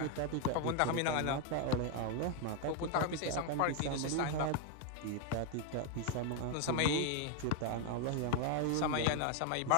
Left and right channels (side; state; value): both; different; correlation 0.01